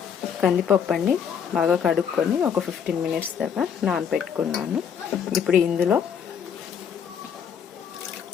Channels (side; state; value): right; quieter; 7.7 dB